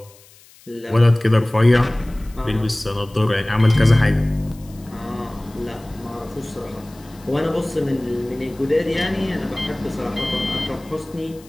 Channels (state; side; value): noise; left; hiss, 25 dB below the sound